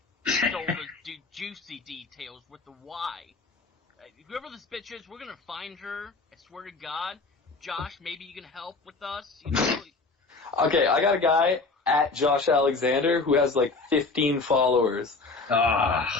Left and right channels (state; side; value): quieter; right; 3.9 dB